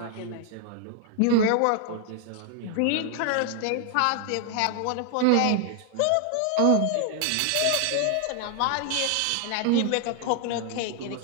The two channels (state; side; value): different; both; correlation 0.00